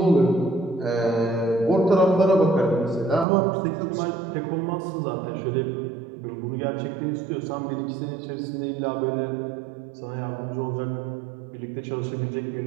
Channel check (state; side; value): drops out; left; at 3.2 s